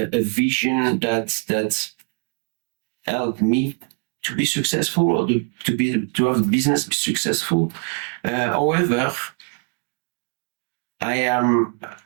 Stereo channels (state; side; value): quieter; left; 38.0 dB